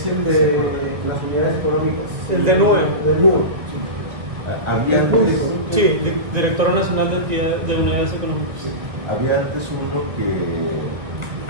el de las unidades económicas. El de nube. De nube, sí. Había Es antes, público, ¿no? Sí, Directora Nacional de Entidades de Unidades Económicas. había antes uno que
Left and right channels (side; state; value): left; late; 1.9 ms